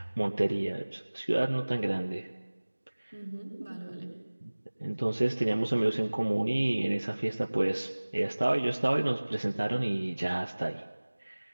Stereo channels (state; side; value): inverted; both; correlation -1.00